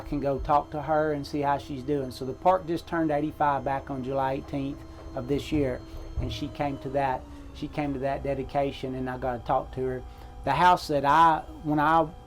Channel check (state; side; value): identical; both; correlation 1.00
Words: can go talk to her and see how she's doing. So the park just turned 85 back on July 18th of this year, and she came to that dedication, and I got to talk to her. The house that when I